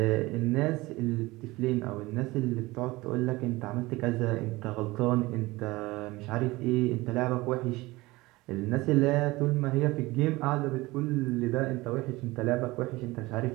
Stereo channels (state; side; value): quieter; left; 20.7 dB